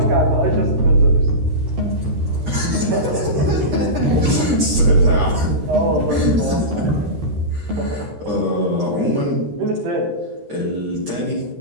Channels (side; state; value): left; late; 13 ms